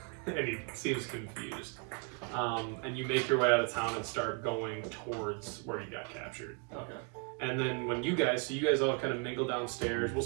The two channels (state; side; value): quieter; left; 36.0 dB